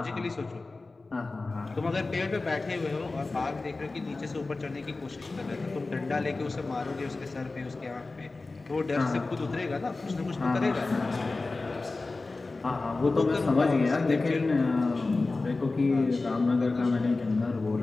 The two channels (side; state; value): right; quieter; 3.5 dB